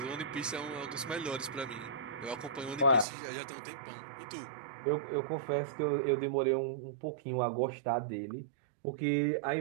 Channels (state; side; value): drops out; left; at 3.1 s